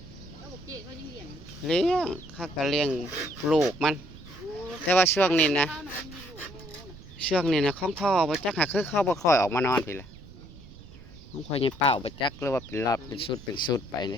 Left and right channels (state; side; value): noise; right; rumble, 18 dB below the sound